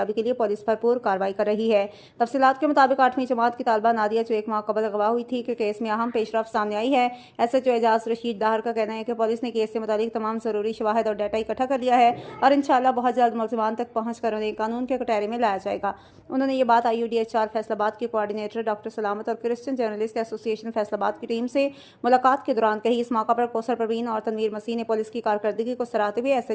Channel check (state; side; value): identical; both; correlation 1.00